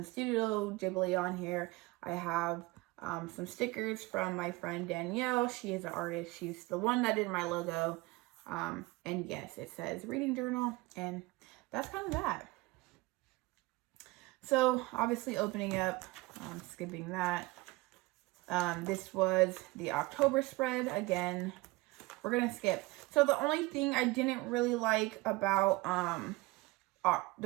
Studio Ghibli on here. I have some stickers from my friend Danielle. She is an artist. She's the one that did my logo. And yes, it says reading journal, and that's kind of that. So obviously opening up, skipping that. This was the October spread. Again, we're going to skip. So the only thing I didn't really like about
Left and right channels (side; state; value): left; quieter; 22.0 dB